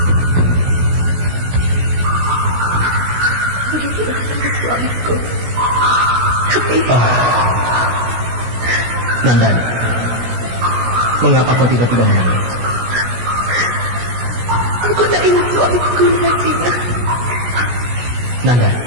Nandani, mengapa kau tiba-tiba menangis? Aku tak ingin suamiku Narasinya. Nandani,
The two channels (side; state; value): left; late; 17 ms